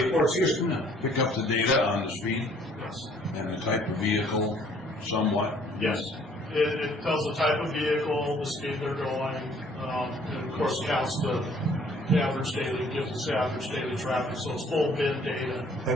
up the data on the speed and the type of vehicle somewhat. Yes. It tells the type of vehicle, the speed they're going, and of course counts the average daily, gives us average daily traffic, so it's full bid data.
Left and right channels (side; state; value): both; normal; correlation 0.59